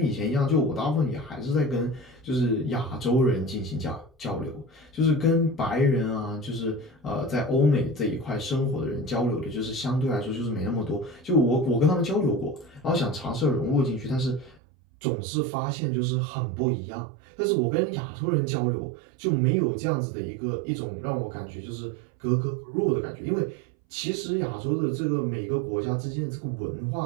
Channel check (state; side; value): drops out; left; at 14.6 s